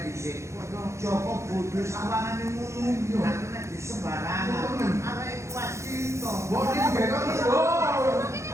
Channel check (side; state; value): left; late; 0.14 ms